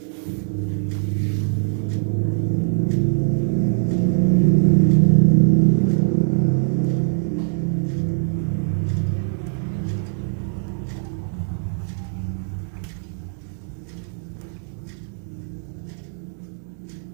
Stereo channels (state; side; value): silent; left; 64 dB below the other